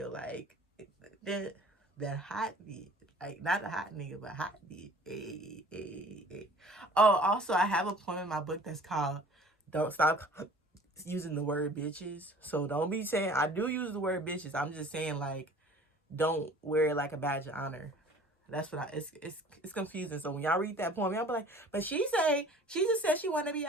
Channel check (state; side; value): normal; both; correlation 0.48